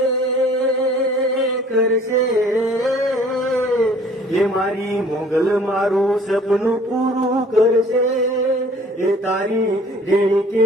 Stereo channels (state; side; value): normal; both; correlation 0.53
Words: કરશે, એ મારી મોગલ મારું સપનું પૂરું કરશે, એ તારી રેણી